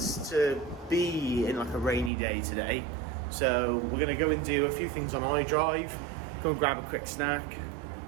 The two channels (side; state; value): left; drops out; at 2.1 s